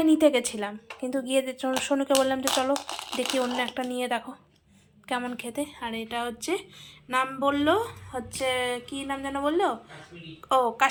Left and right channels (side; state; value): both; identical; correlation 1.00